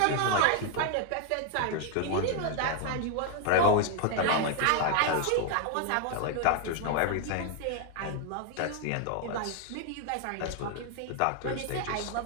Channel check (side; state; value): both; different; correlation 0.00